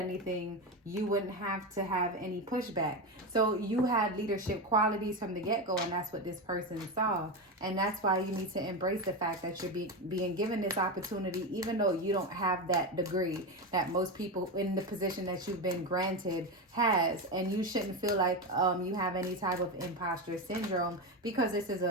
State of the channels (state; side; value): normal; both; correlation 0.15